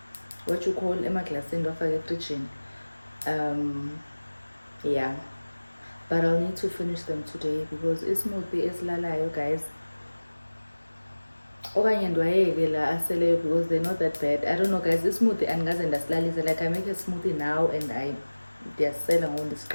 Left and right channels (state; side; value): inverted; both; correlation -1.00